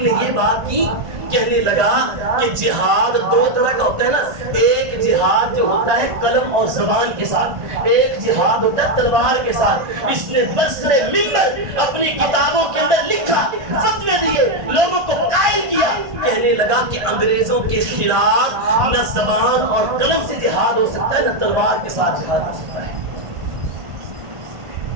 نے یہ بات کی، کہنے لگا کہ جہاد دو طرح کا ہوتا ہے نا، ایک جہاد جو ہوتا ہے قلم اور زبان کے ساتھ، ایک جہاد ہوتا ہے تلوار کے ساتھ۔ اس نے برسر منبر اپنی کتابوں کے اندر لکھا، فتوے دیے، لوگوں کو قائل کیا، کہنے لگا کہ انگریزوں کے خلاف نہ زبان اور قلم سے جہاد ہو سکتا ہے، نہ تلوار کے ساتھ جہاد ہو سکتا ہے۔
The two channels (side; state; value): left; late; 1.5 ms